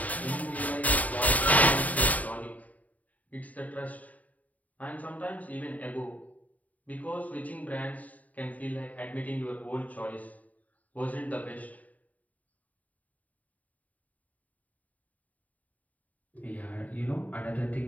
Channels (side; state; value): right; late; 0.073 ms